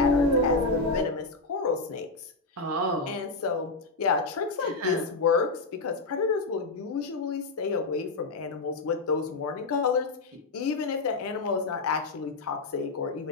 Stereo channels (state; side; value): quieter; right; 3.6 dB